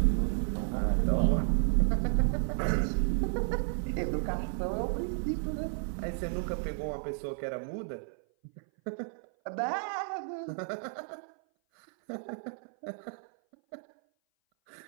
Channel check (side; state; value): left; silent; 56 dB below the other